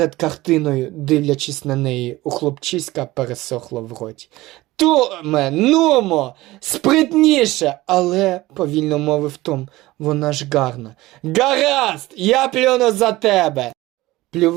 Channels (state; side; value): quieter; left; 18.4 dB